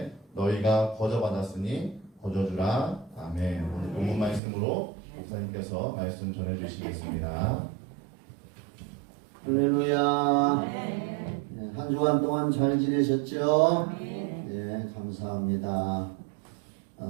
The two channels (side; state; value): left; drops out; at 4.4 s